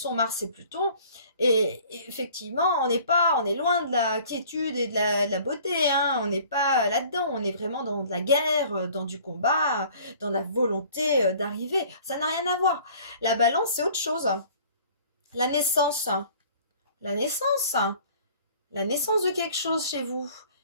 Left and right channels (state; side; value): inverted; both; correlation -0.51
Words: Mars et Pluton. Et effectivement, on est loin de la quiétude et de la beauté. Hein. On n'est pas là-dedans. On est vraiment dans de la guerre, dans du combat, dans la volonté d'arriver. Ça n'a rien à voir. La balance, c'est autre chose. La naissance. La naissance. La naissance de quelque chose chez vous.